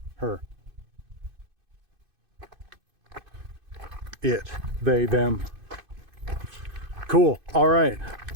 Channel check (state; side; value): late; left; 2.5 ms